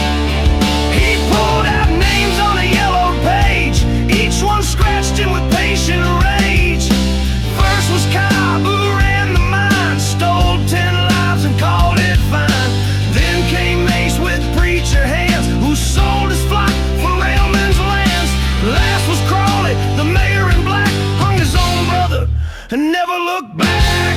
He pulled out names on a yellow page, each one scratched in with patient rage. First was Cobb, who ran the mine, stole 10 lives and called it fine. Then came Mace with preacher hands, who sold his flock for railmen's lands. Last was Crawley, the mayor in black, hung his own brother and never looked back.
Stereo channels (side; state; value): both; identical; correlation 1.00